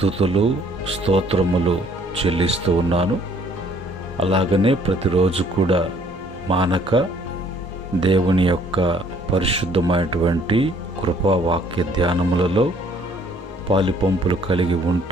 స్తోత్రములు చెల్లిస్తూ ఉన్నాను. అలాగనే ప్రతిరోజు కూడా మానక దేవుని యొక్క పరిశుద్ధమైనటువంటి కృపా వాక్య ధ్యానములలో పాలిపంపులు కలిగి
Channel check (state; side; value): normal; both; correlation 0.61